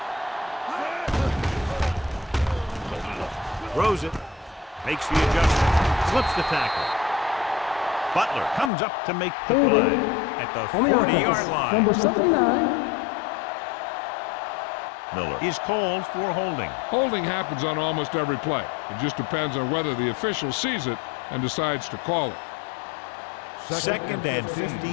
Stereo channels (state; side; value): drops out; right; at 8.7 s